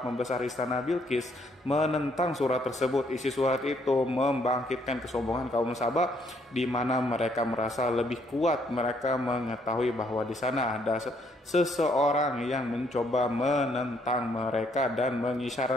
pembesar istana Bilqis menentang surat tersebut. Isi surat itu membangkitkan kesombongan kaum Saba, di mana mereka merasa lebih kuat. Mereka mengetahui bahwa di sana ada seseorang yang mencoba menentang mereka dan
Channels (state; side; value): normal; both; correlation 0.69